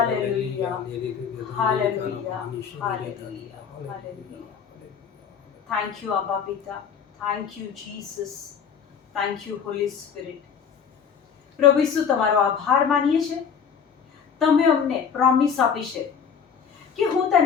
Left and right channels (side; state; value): right; quieter; 6.9 dB